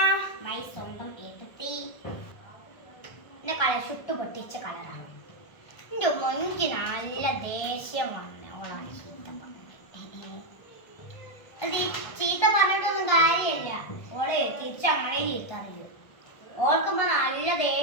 മൈ സ്വന്തം ഏട്ടത്തി. എൻ്റെ കളർ ചുട്ടു പൊട്ടിച്ച കളറാണ്. എൻ്റെ എനിക്ക് നല്ല ദേഷ്യം വന്ന ഓളാണ് ചീത്ത പറഞ്ഞത്. അത് ഈ ചീത്ത പറഞ്ഞിട്ടൊന്നും കാര്യമില്ല. ഓളെ തിരിച്ച് ഞങ്ങളെയും ചീത്ത അറിയും. ഓർക്കുമ്പോ നല്ല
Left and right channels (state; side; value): late; right; 1.3 ms